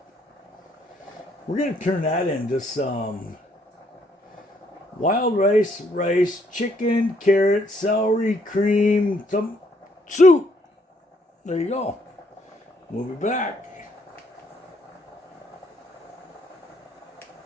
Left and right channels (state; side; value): normal; both; correlation 0.69